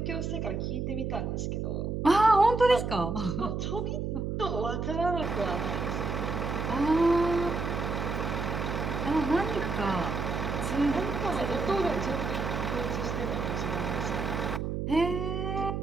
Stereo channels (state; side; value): noise; right; hum, 2 dB below the sound